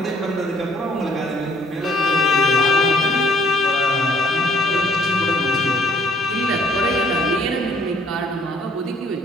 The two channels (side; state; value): both; normal; correlation 0.63